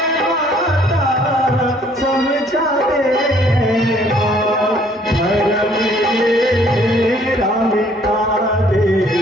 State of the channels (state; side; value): normal; both; correlation 0.61